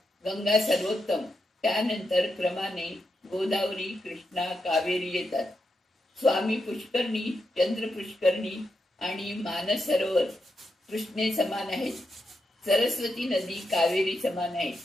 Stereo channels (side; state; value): both; normal; correlation 0.84